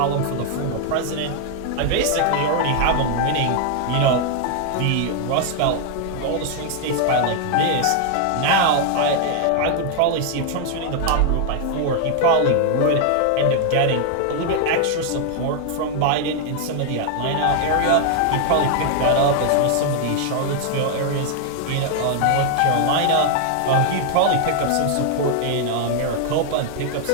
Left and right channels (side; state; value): both; different; correlation 0.00